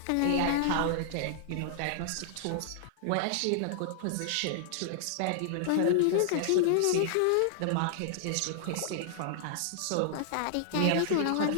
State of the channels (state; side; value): different; both; correlation -0.01